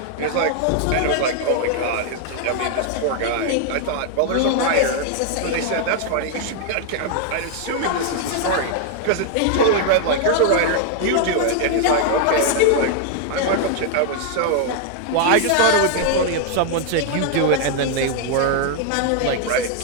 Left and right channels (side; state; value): both; different; correlation 0.00